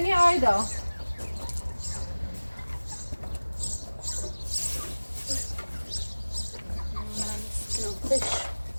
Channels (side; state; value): both; inverted; correlation -1.00